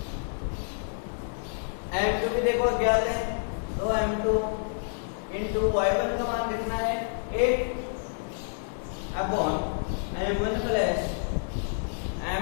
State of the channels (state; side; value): silent; right; digital silence